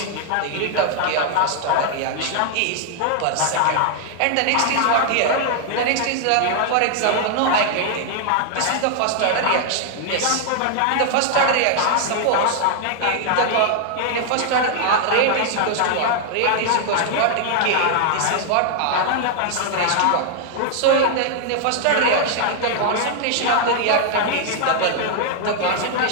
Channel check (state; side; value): different; both; correlation 0.00